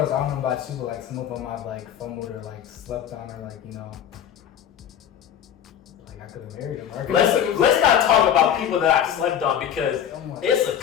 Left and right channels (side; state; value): right; quieter; 9.4 dB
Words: I don't know about you, but like some of them I've like fumbled or like slept on or like, you know, like I could have married them. Let's not talk about people that I've slept on because it's